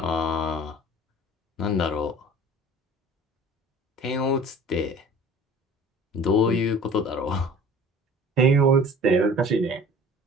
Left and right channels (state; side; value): normal; both; correlation 0.44